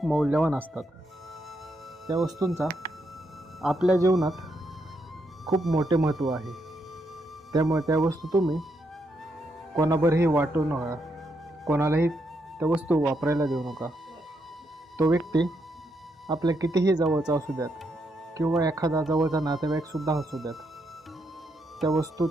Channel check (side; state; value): both; normal; correlation 0.79